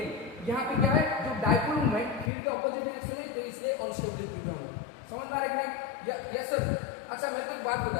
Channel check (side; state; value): right; drops out; at 2.3 s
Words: यहाँ पे क्या है, जो डायपोल मूवमेंट फील्ड के ऑपोजिट डायरेक्शन में, तो इसलिए अनस्टेबल इक्विलिब्रियम है। समझ में आ रहा है कि नहीं? Yes sir. अच्छा मैं तो एक बात